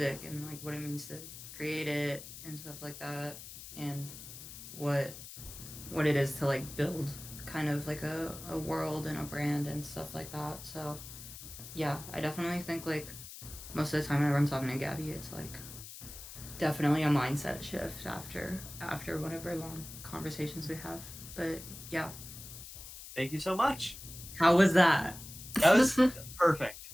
and like what it means to create it and stuff like that, and what it is to like build kind of like a world and a brand and stuff like that. So yeah, I definitely think like most of the time whenever I'm talking to Gabby, it's like definitely a mindset shift after whatever long conversations we have. But yeah. Thank you so much. How was that? That was perfect.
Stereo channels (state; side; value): noise; left; hiss, 13 dB below the sound